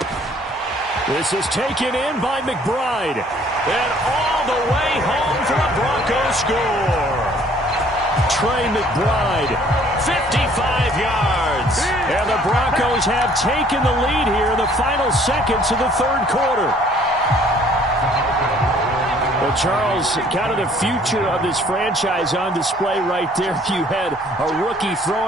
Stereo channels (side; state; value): both; normal; correlation 0.58